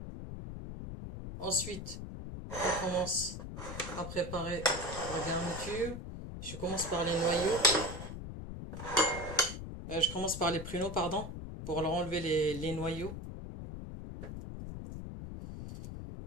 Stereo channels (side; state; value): left; noise; rumble, 8 dB below the sound